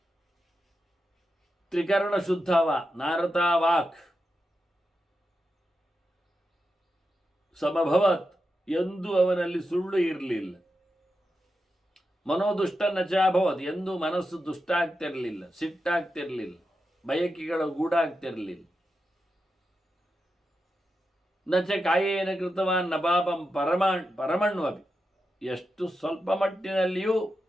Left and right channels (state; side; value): normal; both; correlation 0.88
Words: ತ್ರಿಕರಣ ಶುದ್ಧವ ನಾರತ ವಾಕ್ ಸಮಭವತ್, ಎಂದೂ ಅವನಲ್ಲಿ ಸುಳ್ಳು ಇರಲಿಲ್ಲ. ಮನೋದುಷ್ಟ ನಚಾಭವತ್, ಎಂದೂ ಮನಸ್ಸು ದುಷ್ಟ ಆಗ್ತಿರಲಿಲ್ಲ, ಸಿಟ್ಟಾಗ್ತಿರಲಿಲ್ಲ, ಬಯಕೆಗಳು ಗೂಡಾಗ್ತಿರಲಿಲ್ಲ. ನಚ ಕಾಯೇನ ಕೃತವಾನ್ ನಪಾಪಂ ಪರಮಣ್ವಪಿ, ಎಷ್ಟು ಸ್ವಲ್ಪ ಮಟ್ಟಿನಲ್ಲಿಯೂ